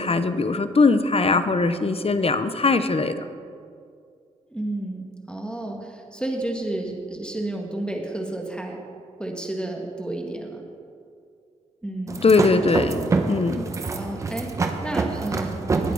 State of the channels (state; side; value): normal; both; correlation 0.64